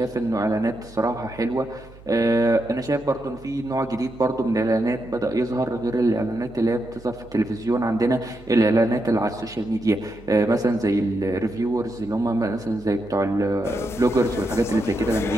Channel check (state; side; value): noise; right; hum, 21 dB below the sound